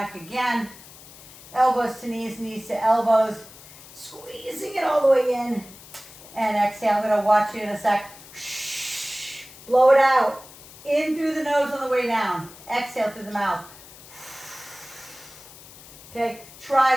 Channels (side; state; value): left; noise; hiss, 19 dB below the sound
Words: again. Elbows to knees, knees to elbows. Squeezing it all the way in. And exhale. I'm going to watch you in a sec. Blow it out. In through the nose on the way down. Exhale through the mouth. Okay, try